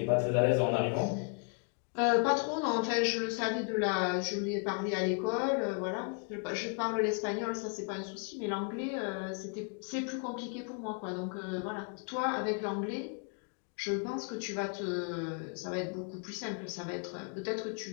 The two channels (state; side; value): quieter; right; 39.1 dB